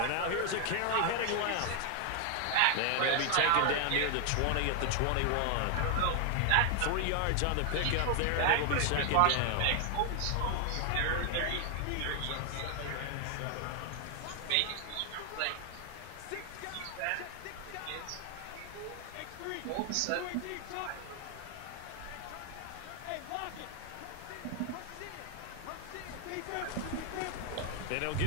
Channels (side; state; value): both; different; correlation 0.00